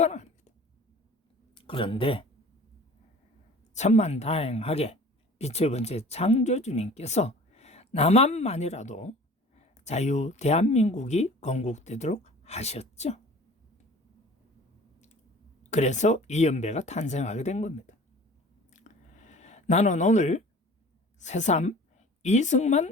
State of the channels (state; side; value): normal; both; correlation 0.45